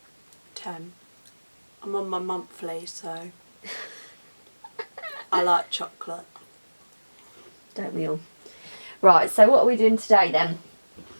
10. I'm on my monthly, so I like chocolate. Don't we all? Right, so what are we doing today then?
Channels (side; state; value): both; inverted; correlation -1.00